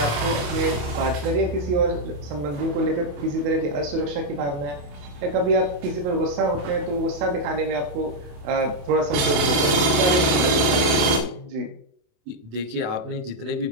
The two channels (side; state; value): left; late; 28 ms